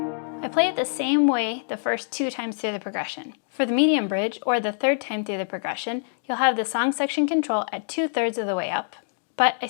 I play it the same way the first 2 times through the progression. For the medium bridge, or the 3rd time through the progression, you'll have the song section control at 2/3 of the way up, but I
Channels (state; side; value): silent; right; digital silence